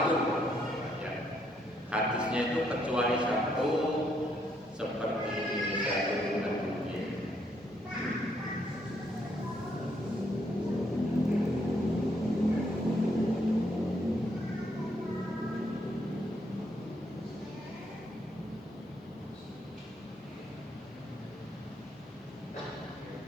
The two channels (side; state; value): both; normal; correlation 0.73